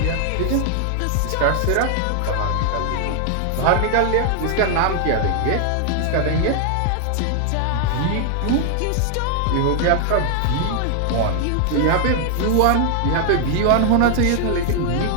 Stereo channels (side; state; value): both; different; correlation 0.00